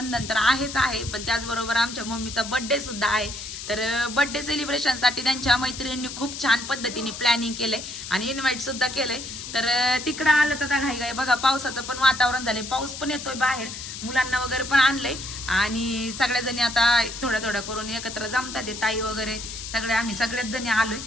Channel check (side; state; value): left; noise; hiss, 9 dB below the sound